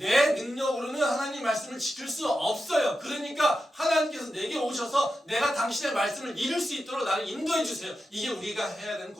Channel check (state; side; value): normal; both; correlation 0.90